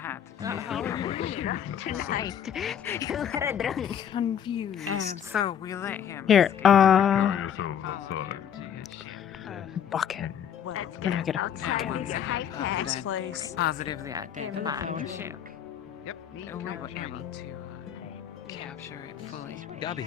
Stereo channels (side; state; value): right; quieter; 8.9 dB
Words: You are a drunk. Confused. And so we let him. Here, bucket. Where do I get a bucket? Positively identified the ship. And we were able to capture it fully. Gabby.